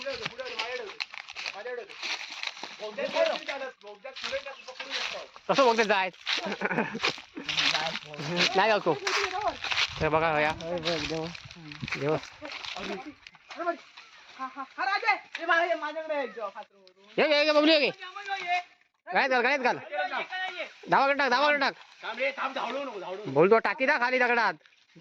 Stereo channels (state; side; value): identical; both; correlation 1.00